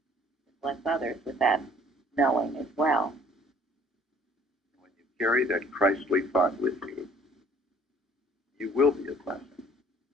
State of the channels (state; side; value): normal; both; correlation 0.57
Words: Bless others with that knowing as well. When you carry that Christly thought with you, you will be a blessing